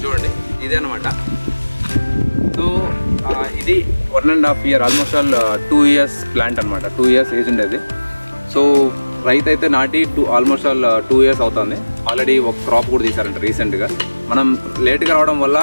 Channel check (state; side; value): inverted; both; correlation -1.00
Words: చూడండి, ఇదే అనమాట. సో ఇది 1.5 year, almost all 2 years plant అనమాట. 2 years ఏజ్ ఉండేది. సో రైతు అయితే నాటి ఆల్మోస్ట్ ఆల్ 2 years అవుతుంది. ఆల్రెడీ ఒక క్రాప్ కూడా తీశారంట రీసెంట్గా. మనం లేట్గా రావడం వల్ల